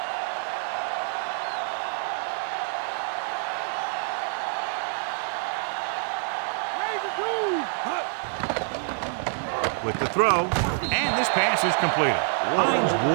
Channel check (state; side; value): silent; left; 61 dB below the other